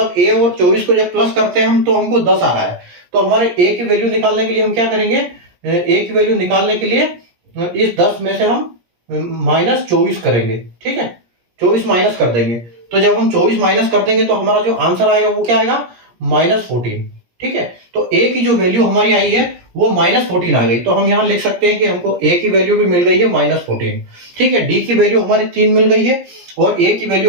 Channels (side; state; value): left; late; 17 ms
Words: a और 24 को जब प्लस करते हैं हम तो हमको 10 आ रहा है। तो हमारे a की वैल्यू निकालने के लिए हम क्या करेंगे, a की वैल्यू निकालने के लिए इस 10 में से हम -24 करेंगे। ठीक है, 24 माइनस कर देंगे, तो जब हम 24 माइनस कर देंगे तो हमारा जो आंसर आएगा वो क्या आएगा, -14। ठीक है, तो a की जो वैल्यू हमारी आई है वो -14 आ गई। तो हम यहां लिख सकते हैं कि हमको a की वैल्यू भी मिल गई है -14। ठीक है, d की वैल्यू हमारी 3 मिल गई है, और a की